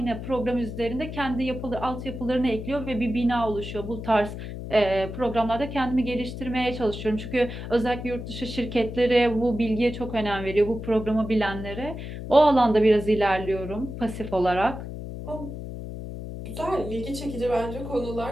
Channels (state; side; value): noise; left; hum, 8 dB below the sound